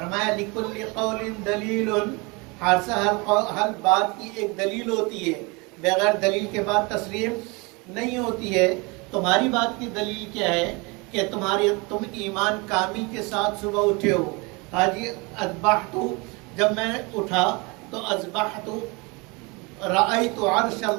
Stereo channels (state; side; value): quieter; left; 27.8 dB